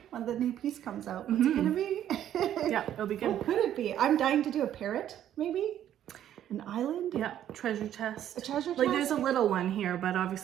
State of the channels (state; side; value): quieter; left; 11.1 dB